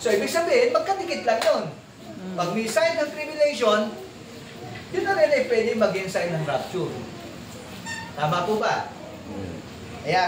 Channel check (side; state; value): both; identical; correlation 1.00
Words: So, ibig sabihin, magkadikit lang yun. Pag may sign ng tribulation, yun na rin ay pwede maging sign ng rapture. Tama po ba? Kaya